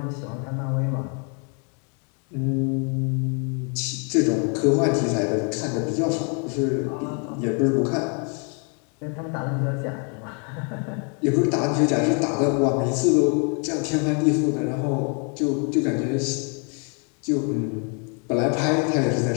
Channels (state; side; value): quieter; right; 38.3 dB